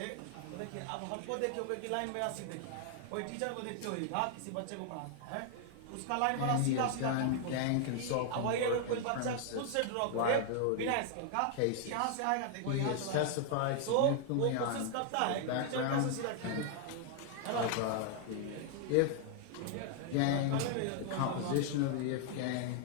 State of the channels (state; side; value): different; both; correlation 0.00